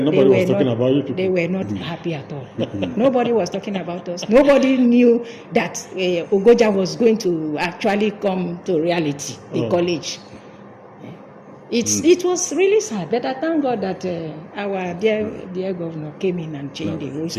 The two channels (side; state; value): both; identical; correlation 1.00